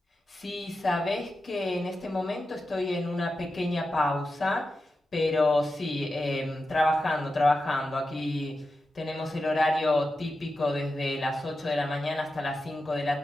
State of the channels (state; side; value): normal; both; correlation 0.91